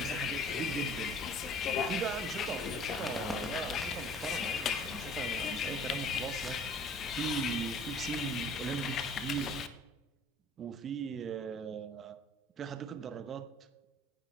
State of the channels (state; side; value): normal; both; correlation 0.50